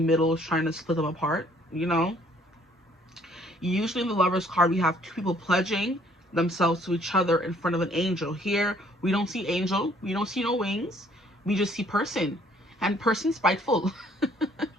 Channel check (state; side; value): normal; both; correlation 0.61